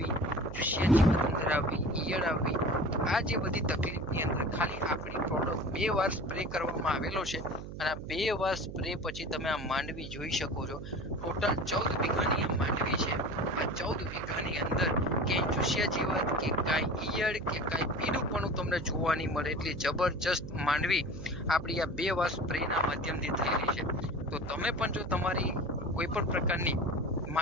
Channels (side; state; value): right; noise; hum, 10 dB below the sound